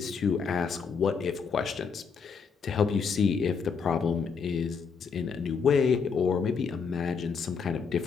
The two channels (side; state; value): right; quieter; 5.7 dB